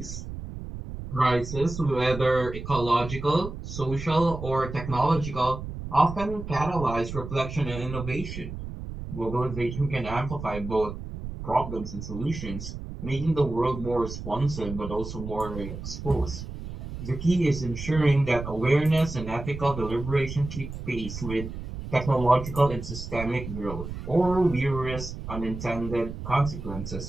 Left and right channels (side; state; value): right; noise; rumble, 9 dB below the sound